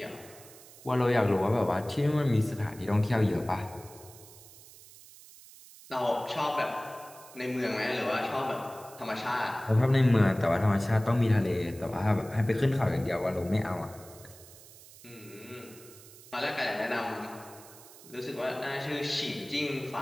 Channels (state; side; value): noise; right; hiss, 20 dB below the sound